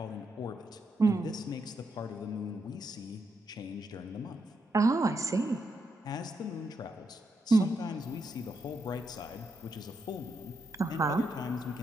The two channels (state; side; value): normal; both; correlation 0.81